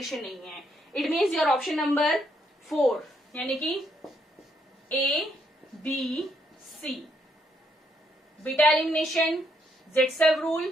नहीं है। It means your option number 4 यानी कि ABC, बीटा एलिमिनेशन, जेटसेफ रूल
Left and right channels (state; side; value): normal; both; correlation 0.74